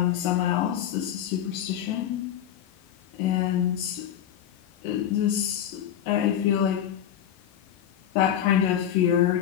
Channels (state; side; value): quieter; right; 10.2 dB